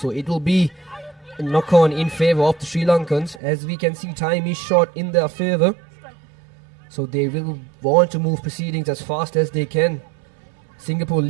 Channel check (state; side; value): drops out; left; at 3.4 s